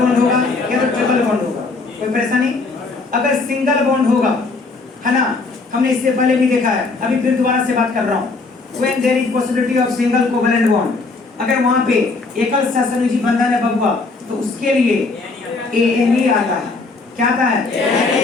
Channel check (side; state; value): right; quieter; 3.8 dB